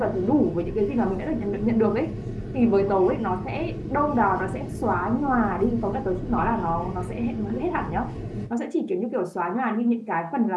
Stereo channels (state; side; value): identical; both; correlation 1.00